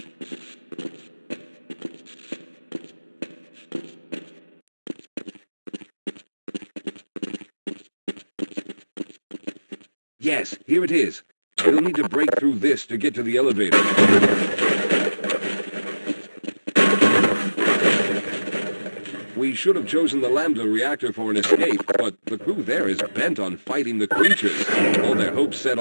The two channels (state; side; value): inverted; both; correlation -1.00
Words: Yes, here it is. We'll need to break through this to get to the elevator. We should have chosen the Lambda reactor for an escape, but the crew there is bent on fighting the creatures. All their hopes set